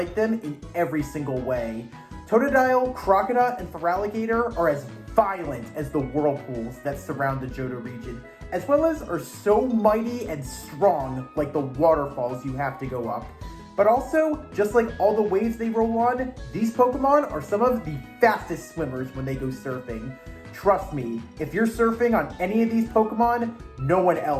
them in every single way. Totodile, Croconaw, and Feraligatr are as violent as the whirlpools that surround the Johto region, as well as are so mighty and strong like the waterfalls you have to go up. But also, just like all the waves they roll on, these Pokemon are some of the fastest swimmers when they go surfing. Trust me, if you're surfing on any of these Pokemon, no one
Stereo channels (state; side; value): identical; both; correlation 1.00